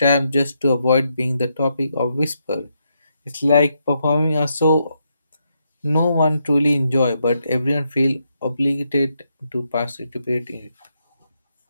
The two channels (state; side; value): inverted; both; correlation -0.80